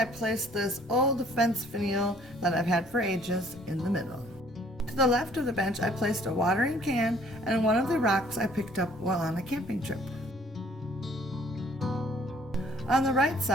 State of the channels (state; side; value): normal; both; correlation 0.59